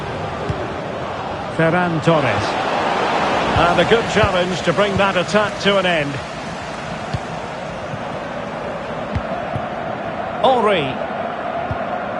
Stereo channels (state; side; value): identical; both; correlation 1.00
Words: Ferran Torres. And a good challenge to bring that attack to an end. Henry.